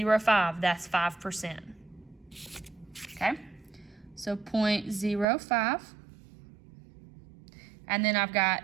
that's 5%. Okay? So 0.05. And then I've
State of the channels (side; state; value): left; drops out; at 5.2 s